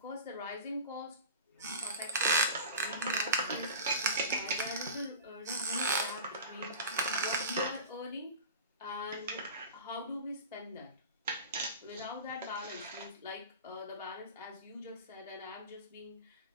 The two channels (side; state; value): both; inverted; correlation -0.31